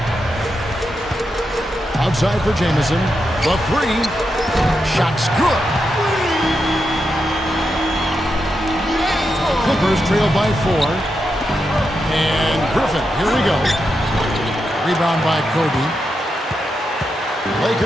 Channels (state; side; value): normal; both; correlation 0.86